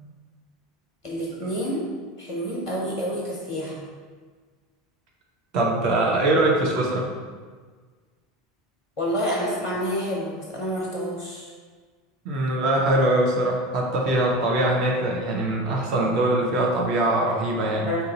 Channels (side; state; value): both; normal; correlation 0.30